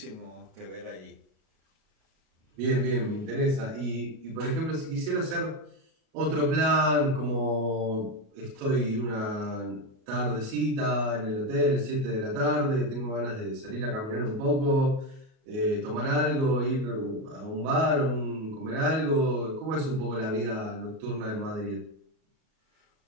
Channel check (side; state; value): left; late; 37 ms